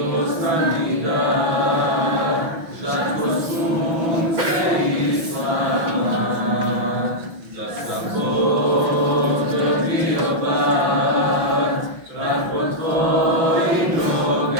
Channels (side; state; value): left; late; 5.9 ms